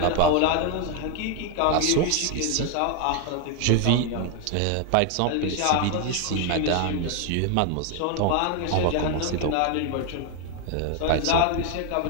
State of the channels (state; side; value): different; both; correlation 0.01